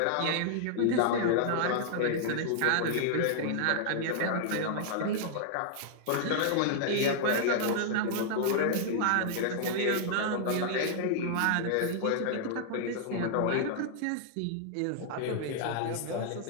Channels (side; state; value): both; different; correlation -0.01